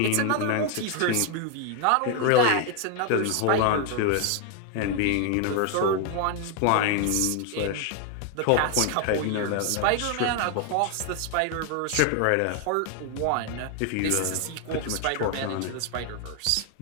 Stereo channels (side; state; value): both; different; correlation 0.01